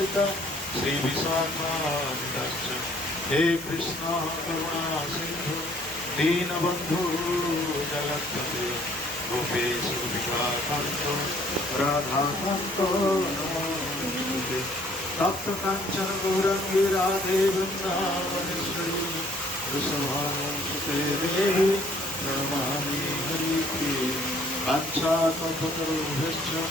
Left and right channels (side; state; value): both; normal; correlation 0.60